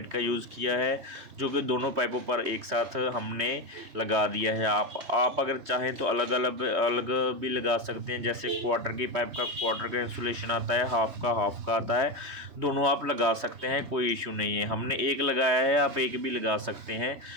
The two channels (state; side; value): late; left; 3.2 ms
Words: का यूज़ किया है, जो कि दोनों पाइपों पर एक साथ हमने लगा दिया है। आप अगर चाहें तो अलग अलग भी लगा सकते हैं। जैसे क्वार्टर की पाइप का क्वार्टर का इंसुलेशन आता है, हाफ का आता है, दोनों आप लगा सकते हैं, कोई इशू नहीं है। हमने एक लगाया है, आप एक भी लगा सकते हैं।